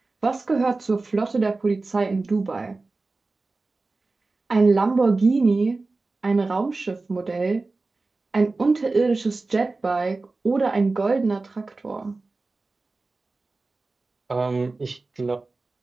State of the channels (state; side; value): quieter; left; 3.5 dB